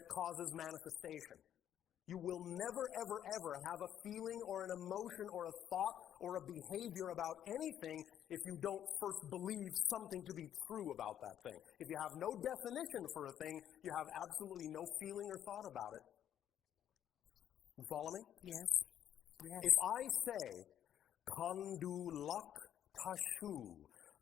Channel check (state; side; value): quieter; right; 10.4 dB